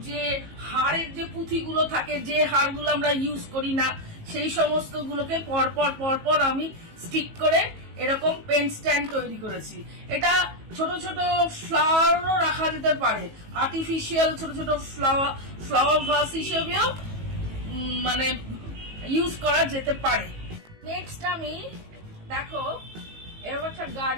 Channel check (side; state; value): left; late; 18 ms